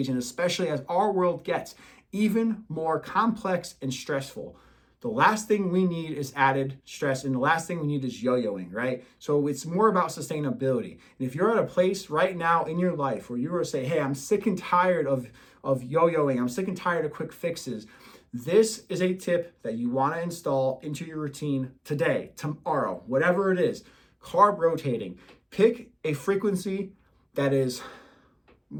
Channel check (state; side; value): identical; both; correlation 1.00